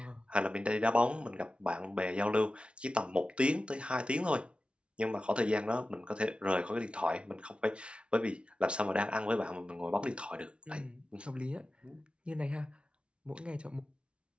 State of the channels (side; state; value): left; late; 0.059 ms